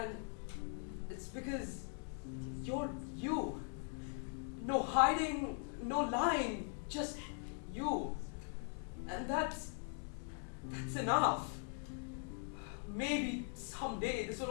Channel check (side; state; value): right; silent; 50 dB below the other